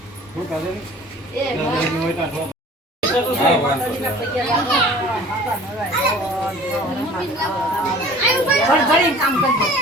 શું કાલે એ ભાઈ હોય તા પગે લાગો કામ કરજો.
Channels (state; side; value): normal; both; correlation 0.46